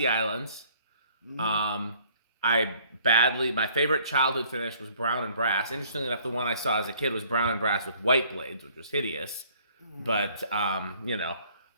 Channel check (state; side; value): inverted; both; correlation -0.59